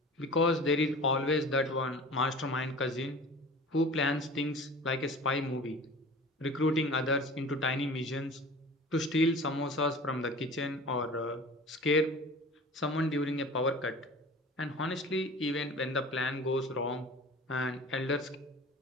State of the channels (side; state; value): both; normal; correlation 0.40